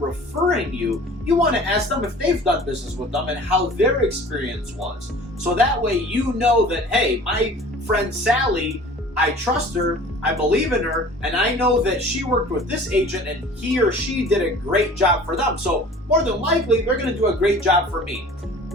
you, you want to ask them if they've done business with them and how their experience was. So that way you know that, hey, my friend Sally, I trust her, I believe in her, and I know that she worked with this agent and he or she did a great job for them. So more than likely, they're going to do a great job for me.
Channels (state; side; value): normal; both; correlation 0.45